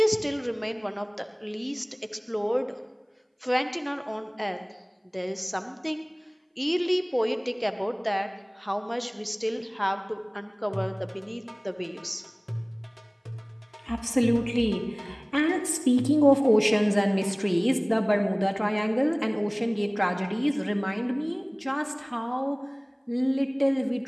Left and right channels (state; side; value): identical; both; correlation 1.00